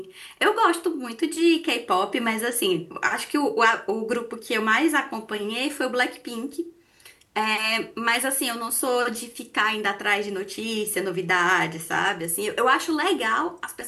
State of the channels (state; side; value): identical; both; correlation 1.00